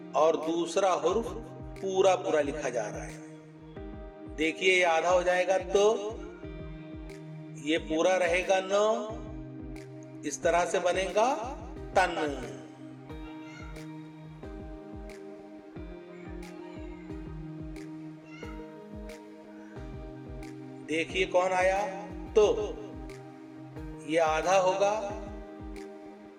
और दूसरा हुर्फ पूरा पूरा लिखा जा रहा है। देखिए ये आधा हो जाएगा तो, ये पूरा रहेगा न, इस तरह से बनेगा तन। देखिए कौन आया, तो ये आधा होगा,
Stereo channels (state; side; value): identical; both; correlation 1.00